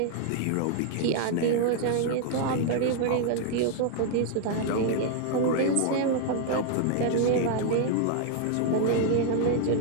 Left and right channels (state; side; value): different; both; correlation 0.00